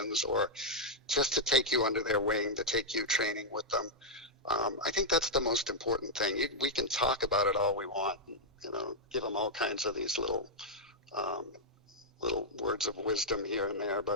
or just to take you under their wing, to take you training with them. I think that's the most important thing. We can talk about it all we want, give them all kinds of these little words of wisdom here and there.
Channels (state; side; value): normal; both; correlation -0.05